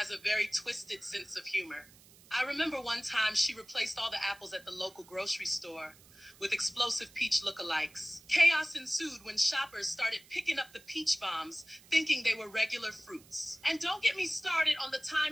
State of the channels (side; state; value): right; noise; hiss, 24 dB below the sound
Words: a very twisted sense of humor. I remember one time she replaced all the apples at the local grocery store with explosive peach lookalikes. Chaos ensued when shoppers started picking up the peach bombs, thinking they were regular fruits. And don't get me started on the time